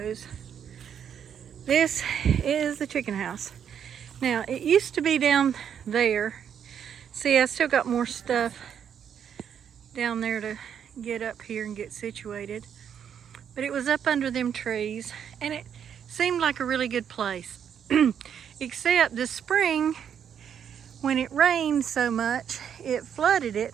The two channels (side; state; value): left; quieter; 8.3 dB